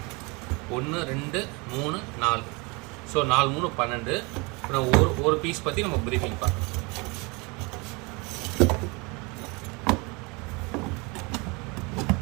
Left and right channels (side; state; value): left; quieter; 28.1 dB